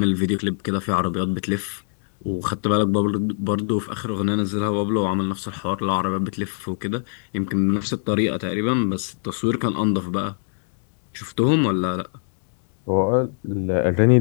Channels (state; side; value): silent; right; 64 dB below the other